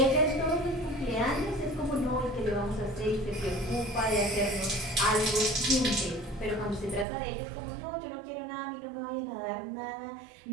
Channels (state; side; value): drops out; left; at 7.1 s